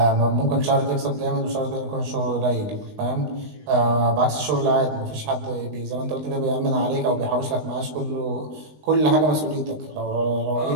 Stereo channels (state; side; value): late; left; 20 ms